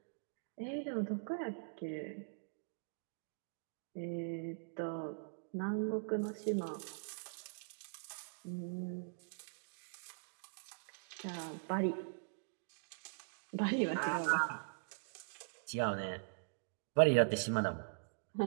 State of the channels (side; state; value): left; silent; digital silence